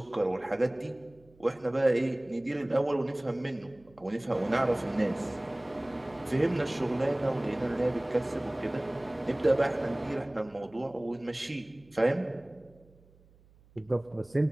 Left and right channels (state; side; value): noise; right; hum, 28 dB below the sound